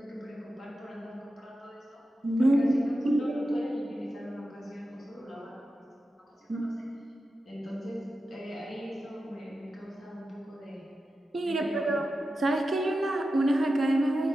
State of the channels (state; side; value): normal; both; correlation 0.91